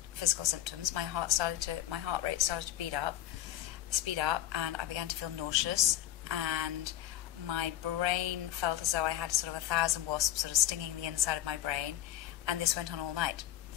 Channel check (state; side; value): quieter; right; 13.1 dB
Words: physical symptoms. My heart rate started to speed up, and I began to feel nauseous, and my brain felt as though I had sort of 1,000 wasps sort of stinging the inside of my brain, and this went on all night.